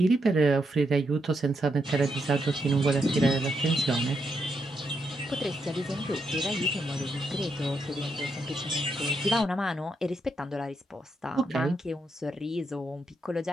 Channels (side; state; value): both; normal; correlation 0.81